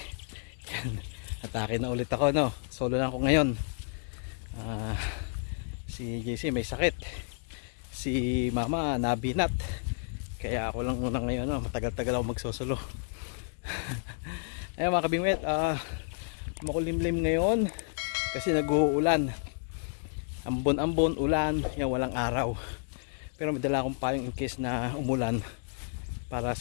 Yan, atake na ulit ako, no. Solo lang ako ngayon. Si JC may sakit, si mama nabinat, kaya ako lang muna ngayon, no. Matagal-tagal ako magsosolo. Ayun mga kabingwet, makulimlim ngayon kasi nag-uulan. Ambon-ambon, ulan, yan, walang araw. Pero may dala akong payong in case na umulan para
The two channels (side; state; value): right; silent; digital silence